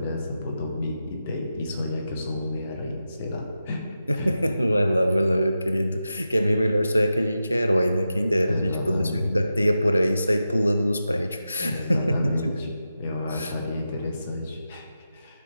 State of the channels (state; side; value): inverted; both; correlation -0.90